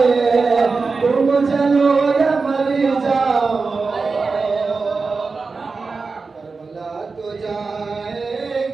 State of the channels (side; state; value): left; quieter; 4.4 dB